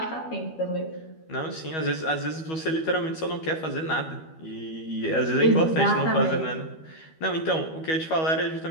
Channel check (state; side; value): late; right; 12 ms